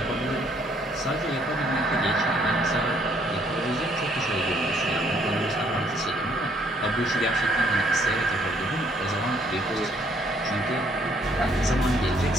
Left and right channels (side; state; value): both; normal; correlation 0.66